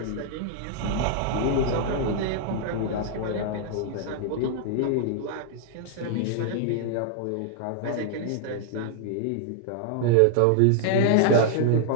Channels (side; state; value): both; different; correlation -0.01